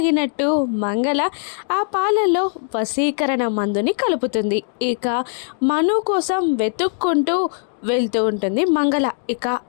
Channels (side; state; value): right; silent; digital silence